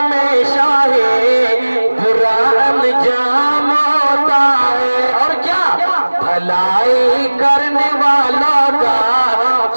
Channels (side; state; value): both; inverted; correlation -1.00